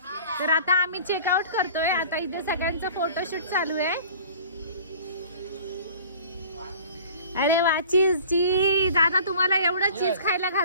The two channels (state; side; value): inverted; both; correlation -0.46